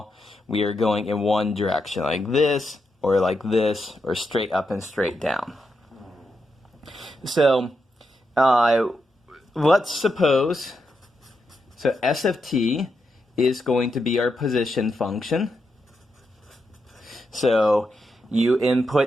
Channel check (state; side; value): normal; both; correlation 0.84